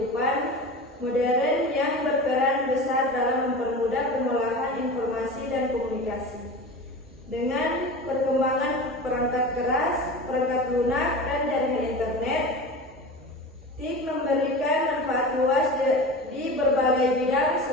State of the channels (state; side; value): normal; both; correlation 0.31